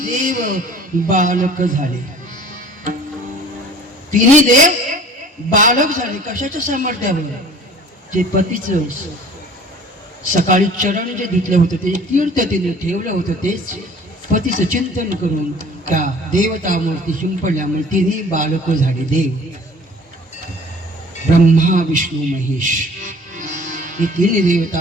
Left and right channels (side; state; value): both; normal; correlation 0.48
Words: बालक झाले. तिन्ही देव बालक झाले. कशाच्या सामर्थ्यावर? जे पतीचं सकाळी चरण जे धुतलं होतं, ते तीर्थ तिने ठेवलं होतं, तेच पतीचं चिंतन करून त्या देवतामूर्ती शिंपडल्यामुळे तिन्ही बालक झाले. देव, ब्रह्मा, विष्णू, महेश हे तिन्ही